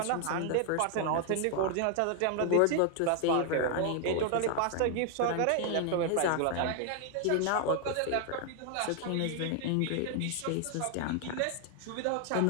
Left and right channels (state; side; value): different; both; correlation 0.00